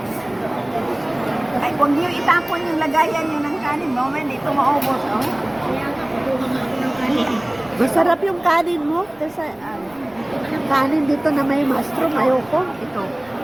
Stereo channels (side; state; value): right; noise; rumble, 28 dB below the sound